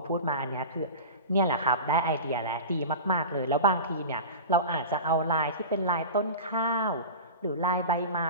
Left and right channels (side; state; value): both; inverted; correlation -0.30